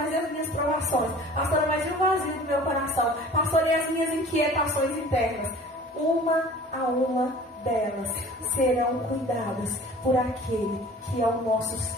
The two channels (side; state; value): both; normal; correlation 0.45